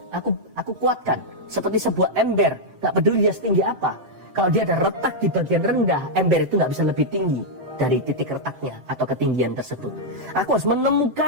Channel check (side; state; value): left; late; 7.8 ms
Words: kuatkan. Seperti sebuah ember, gak peduli dia setinggi apa. Kalau dia ada retak di bagian rendah, ember itu gak bisa lebih tinggi dari titik retaknya atau ketinggian tersebut. Aku harus